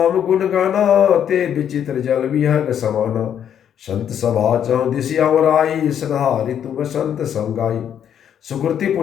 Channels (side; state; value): right; quieter; 9.2 dB